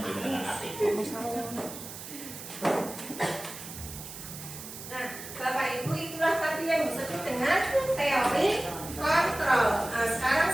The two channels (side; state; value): right; noise; hiss, 11 dB below the sound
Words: dengan hati. Nah, Bapak Ibu itulah tadi yang disebut dengan teori kontrol. Nah, sekarang